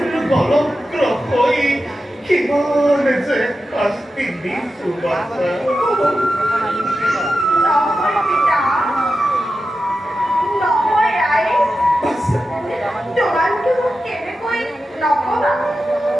বলক্র হই কিমান যে শাস্তি দিছু বাছা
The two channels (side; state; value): both; normal; correlation 0.91